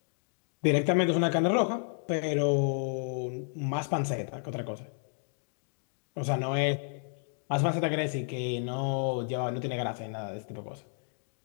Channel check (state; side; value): silent; right; digital silence